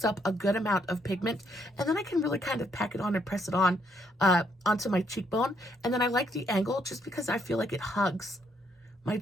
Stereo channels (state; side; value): normal; both; correlation 0.72